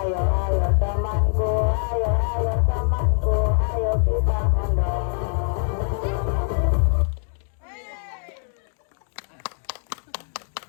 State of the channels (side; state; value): right; silent; digital silence